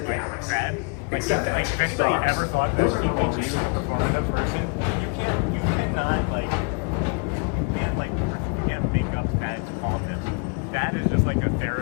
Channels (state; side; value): quieter; right; 34.5 dB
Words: Except if anybody ever thought that TPG was a performative person, you can't make up Thad's calmness. Thad is just like a